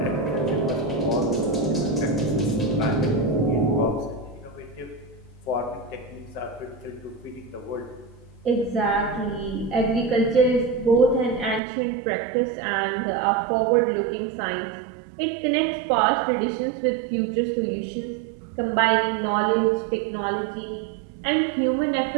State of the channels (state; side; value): drops out; left; at 11.6 s